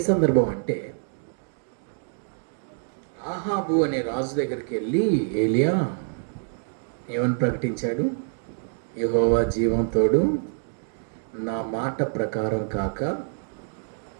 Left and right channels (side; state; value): left; silent; 58 dB below the other